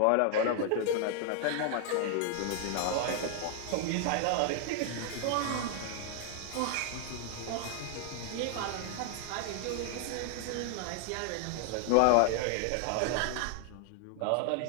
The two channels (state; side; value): different; both; correlation 0.00